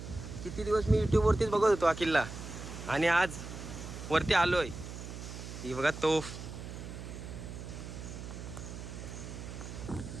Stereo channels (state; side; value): noise; right; hum, 10 dB below the sound